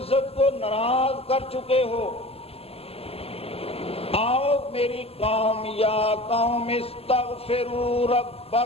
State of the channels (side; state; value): right; late; 0.29 ms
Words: کو ناراض کر چکے ہو۔ آؤ میری قوم، یا قوم استغفروا